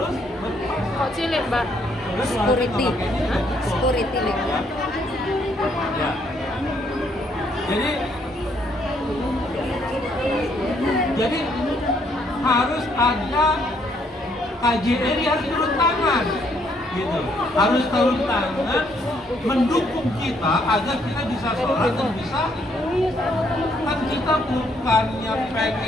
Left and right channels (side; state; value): both; normal; correlation 0.70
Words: berpuasa. Kok cilik, Mbak? Security. Security nih. Ya. Jadi harus ada KJRI harus turun tangan, gitu. Harus turun tangan mendukung kita agar kita bisa sholat dan bisa. Kan kita bukannya